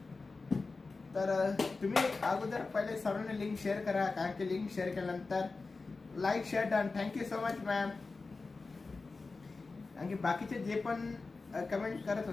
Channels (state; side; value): quieter; right; 3.9 dB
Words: तर तुम्ही अगोदर पहिले सर्वांनी लिंक शेअर करा, कारण की लिंक शेअर केल्यानंतर like share done. Thank you so much ma'am. आणखी बाकीचे जे पण कमेंट करत